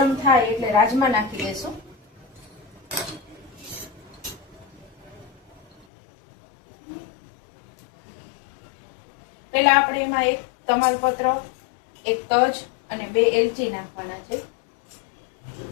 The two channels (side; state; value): right; drops out; at 5.9 s